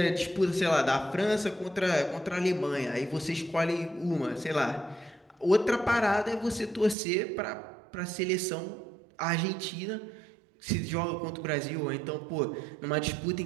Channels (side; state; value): left; drops out; at 7.0 s